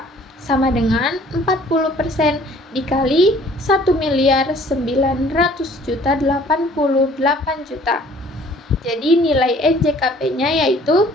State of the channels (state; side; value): normal; both; correlation 0.55